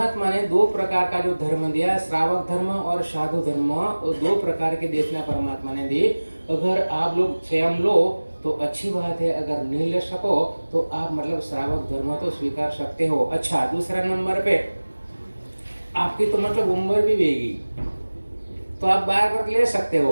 ने दो प्रकार का जो धर्म दिया, श्रावक धर्म और साधु धर्म, और दो प्रकार के देशना परमात्मा ने दी। अगर आप लोग स्वयं लो तो अच्छी बात है, अगर नहीं ले सको तो आप मतलब श्रावक धर्म तो स्वीकार सकते हो। अच्छा, दूसरा नंबर पे आपकी तो मतलब उम्र भी बेगी, तो आप बार बार ले सकते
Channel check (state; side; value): inverted; both; correlation -1.00